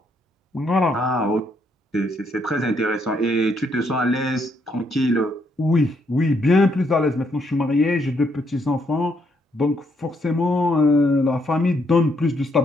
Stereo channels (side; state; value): both; normal; correlation 0.73